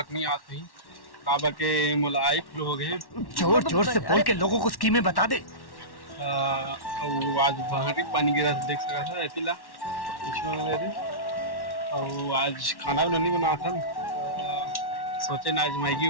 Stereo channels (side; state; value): right; late; 1.1 ms